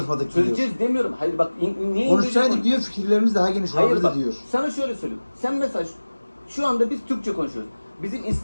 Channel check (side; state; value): both; inverted; correlation -1.00